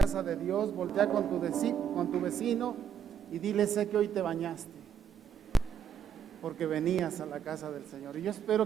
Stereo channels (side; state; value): left; quieter; 8.1 dB